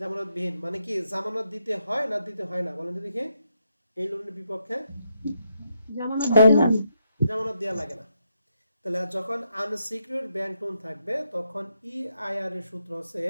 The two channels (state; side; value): inverted; both; correlation -0.80